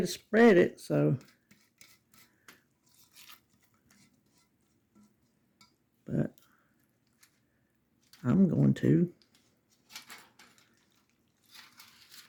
spread it, so. But I'm going to.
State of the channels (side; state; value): both; identical; correlation 1.00